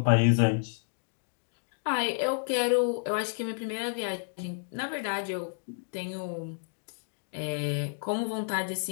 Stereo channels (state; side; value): silent; right; digital silence